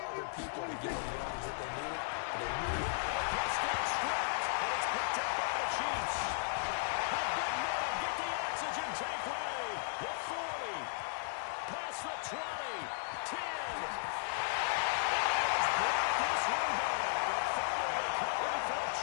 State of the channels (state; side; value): silent; right; digital silence